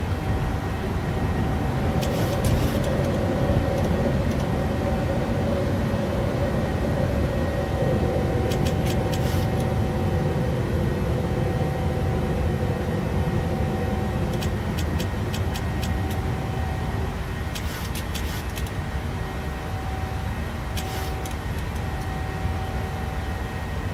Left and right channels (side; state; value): both; identical; correlation 1.00